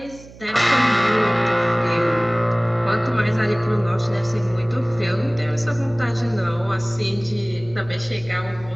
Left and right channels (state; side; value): noise; right; hum, 20 dB below the sound